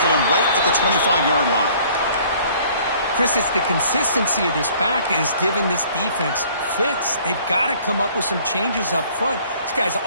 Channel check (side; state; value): both; inverted; correlation -0.56